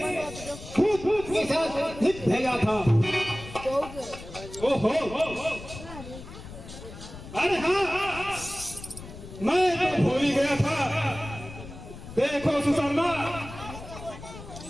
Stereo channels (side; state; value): left; noise; rumble, 14 dB below the sound